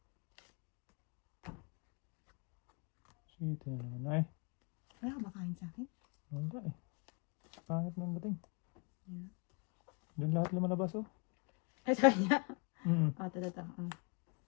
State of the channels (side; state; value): right; quieter; 34.0 dB